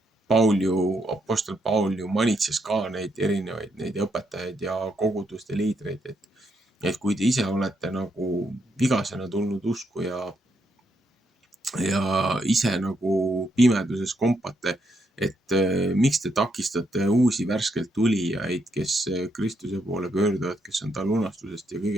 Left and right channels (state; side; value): normal; both; correlation 0.78